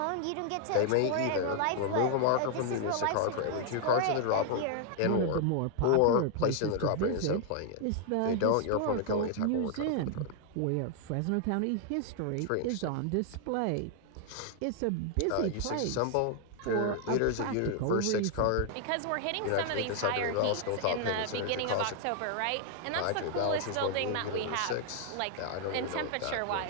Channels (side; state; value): both; different; correlation 0.00